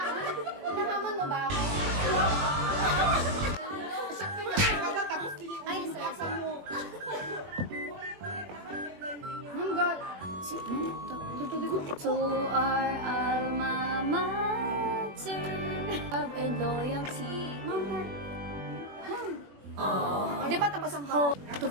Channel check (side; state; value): left; late; 21 ms